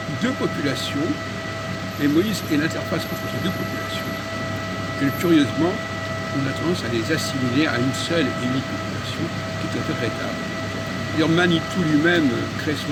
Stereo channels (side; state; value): both; identical; correlation 1.00